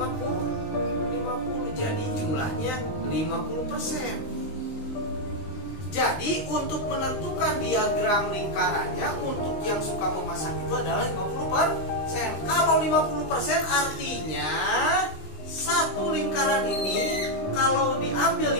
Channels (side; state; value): right; late; 19 ms